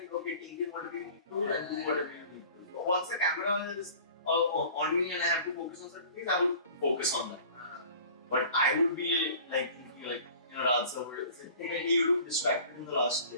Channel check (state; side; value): inverted; both; correlation -0.45